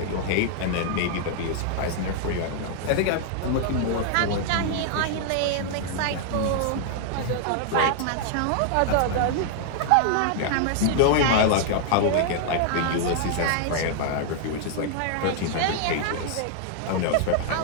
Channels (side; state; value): both; different; correlation 0.00